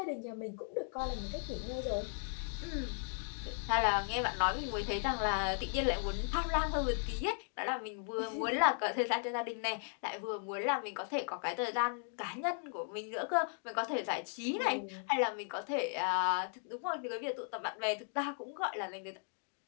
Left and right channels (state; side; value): silent; right; 53 dB below the other